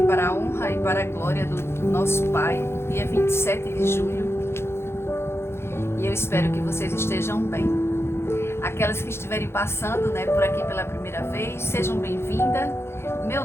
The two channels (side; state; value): right; late; 0.12 ms